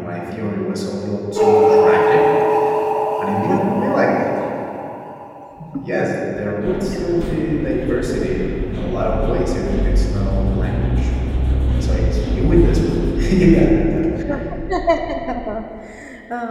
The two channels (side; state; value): both; identical; correlation 1.00